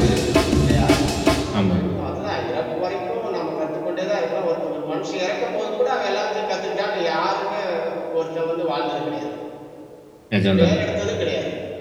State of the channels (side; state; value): both; identical; correlation 1.00